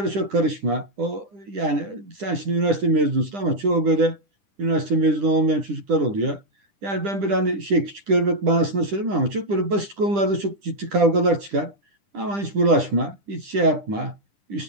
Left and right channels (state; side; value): late; left; 10 ms